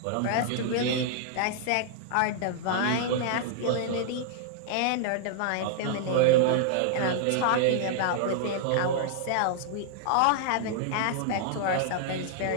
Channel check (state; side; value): different; both; correlation -0.01